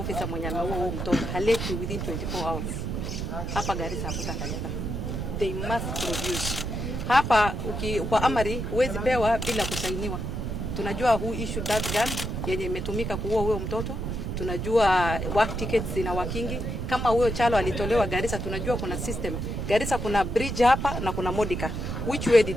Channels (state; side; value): noise; right; rumble, 3 dB below the sound